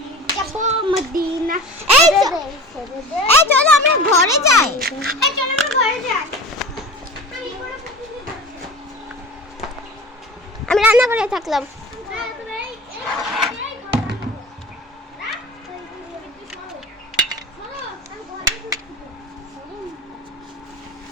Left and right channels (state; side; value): normal; both; correlation 0.35